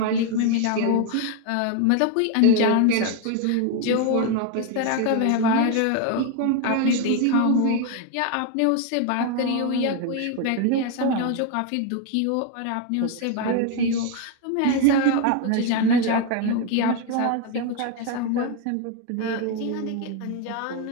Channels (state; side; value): different; both; correlation 0.01